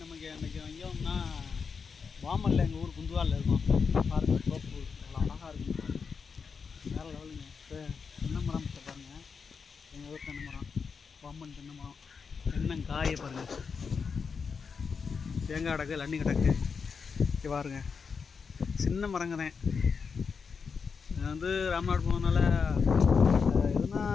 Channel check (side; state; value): right; quieter; 5.6 dB